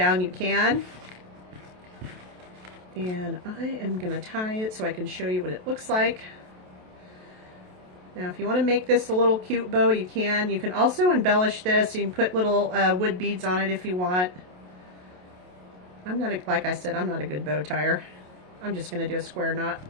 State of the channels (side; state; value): left; late; 28 ms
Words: you can. And I am going to tie it so I can show you what it looks like. Now if you want to make this a little cute bow, you can. You can also embellish this. You can put little wood beads on it if you want. I'm not, like I said, I'm not a good bow tire. I'm just going to do a square knot.